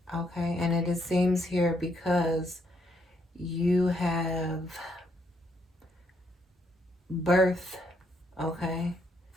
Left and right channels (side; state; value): both; normal; correlation 0.74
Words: Okay, and it seems here because you have birth, okay,